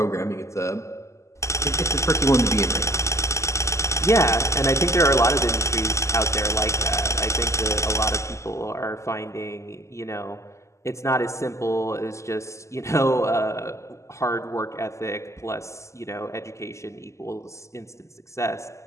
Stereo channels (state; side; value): late; right; 0.14 ms